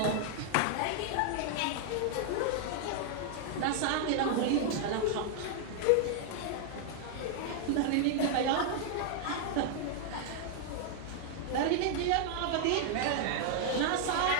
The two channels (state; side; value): different; both; correlation 0.00